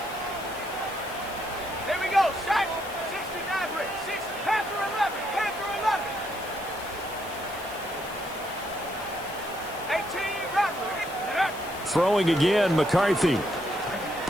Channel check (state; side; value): noise; left; hiss, 16 dB below the sound